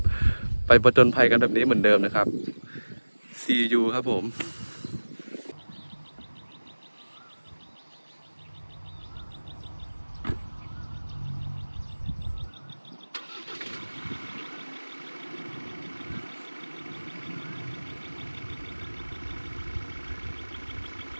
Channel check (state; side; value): inverted; both; correlation -1.00